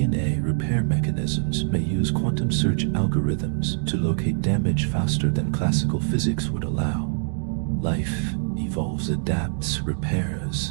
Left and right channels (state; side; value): silent; left; 62 dB below the other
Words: repair mechanisms may use quantum search algorithms to locate damage faster than classical physics would allow. Life evolves, adapts,